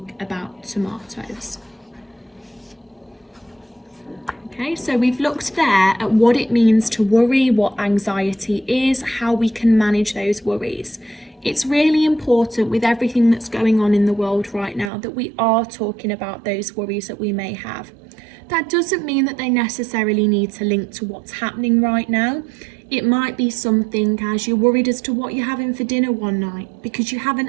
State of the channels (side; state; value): left; drops out; at 14.9 s